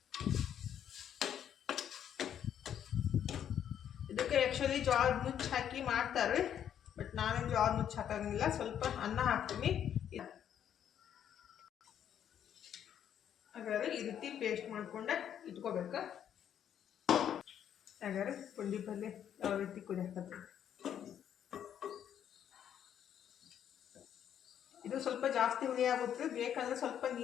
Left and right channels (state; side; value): quieter; right; 9.5 dB